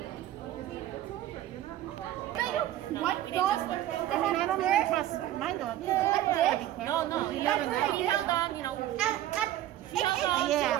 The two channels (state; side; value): quieter; left; 13.3 dB